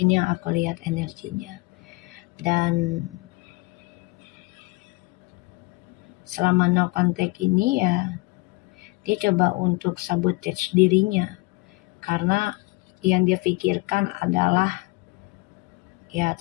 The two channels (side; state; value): right; quieter; 25.1 dB